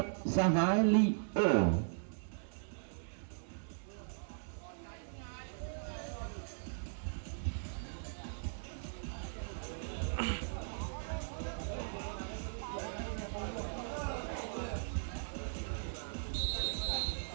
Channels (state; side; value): silent; left; digital silence